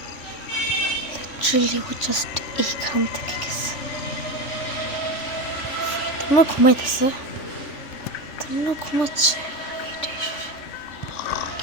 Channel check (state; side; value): late; right; 3.4 ms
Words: লিটারালি ও জাস্ট এইখান থেকে গেছে। তোমরা ঘুমাইতেছে, তোমরা ঘুমাচ্ছে,